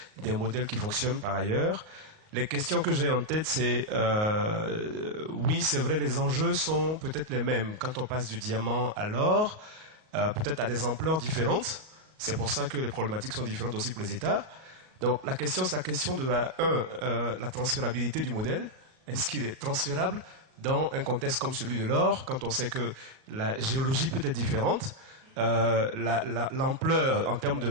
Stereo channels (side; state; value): left; late; 38 ms